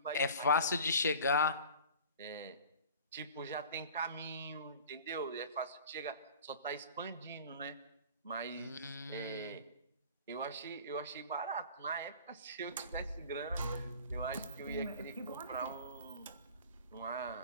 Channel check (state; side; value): inverted; both; correlation -0.42